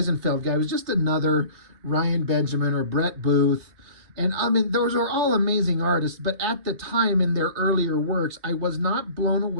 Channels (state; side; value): late; left; 3.2 ms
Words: guy was just another Ryan Benjamin or Brett Booth. And I mean, those are all amazing artists, but at the time in their earlier works, I was not blown